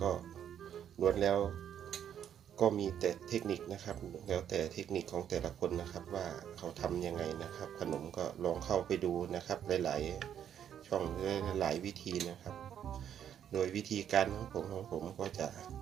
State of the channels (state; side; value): quieter; left; 9.4 dB